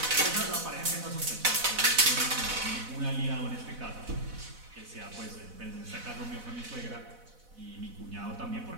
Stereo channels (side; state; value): left; late; 4.0 ms